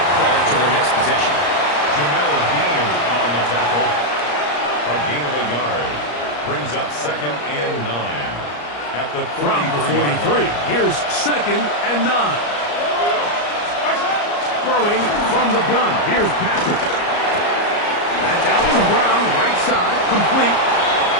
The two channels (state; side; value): late; right; 34 ms